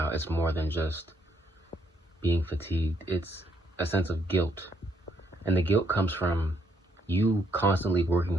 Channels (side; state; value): both; normal; correlation 0.72